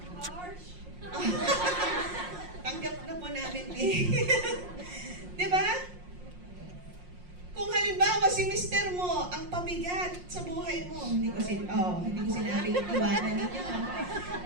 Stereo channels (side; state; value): left; late; 5.6 ms